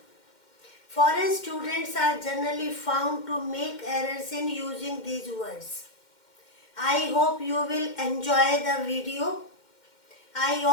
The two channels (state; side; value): late; right; 2.1 ms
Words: Foreign students are generally found to make errors in using these words. I hope you will enjoy the video. I